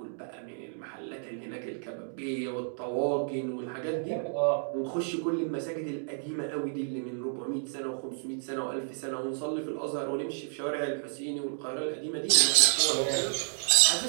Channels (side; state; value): left; silent; digital silence